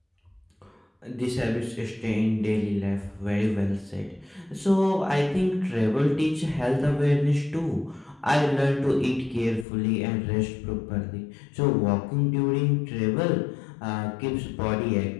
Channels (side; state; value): right; drops out; at 9.7 s